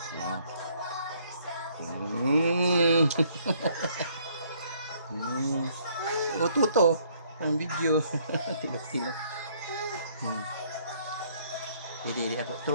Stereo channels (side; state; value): both; inverted; correlation -0.64